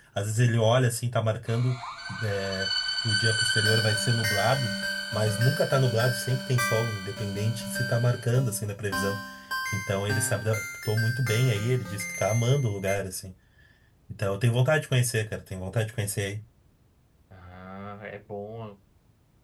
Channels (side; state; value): both; identical; correlation 1.00